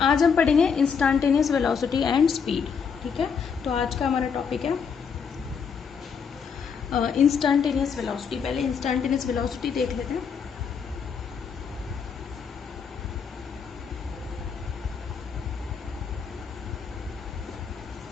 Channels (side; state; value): right; quieter; 6.3 dB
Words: आज हम पढ़ेंगे इंस्टेंटेनियस वेलोसिटी एंड स्पीड। ठीक है, तो आज का हमारा टॉपिक है इंस्टेंटेनियस वेलोसिटी। पहले इंस्टेंटेनियस वेलोसिटी देख लेते हैं।